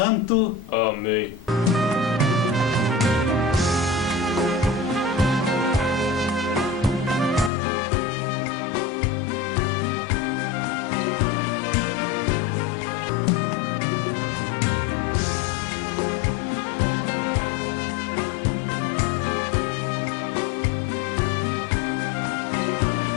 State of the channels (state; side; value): drops out; right; at 7.5 s